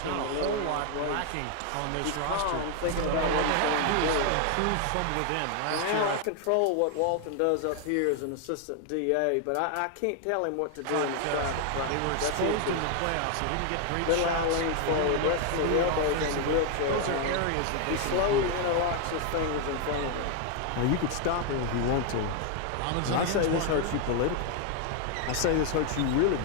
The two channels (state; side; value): different; both; correlation 0.00